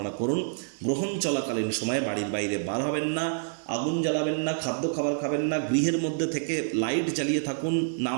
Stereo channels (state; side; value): silent; left; digital silence